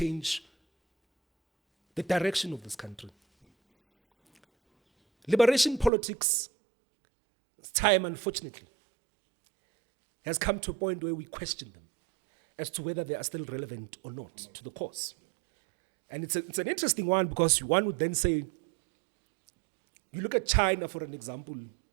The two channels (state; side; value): drops out; left; at 5.9 s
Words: the direction of this country. Liberation politics, time unfortunately, has come to a point where we question them as to whether they are still relevant or not to the cause. And it's an interesting one, because one would then say, you look at China for an example,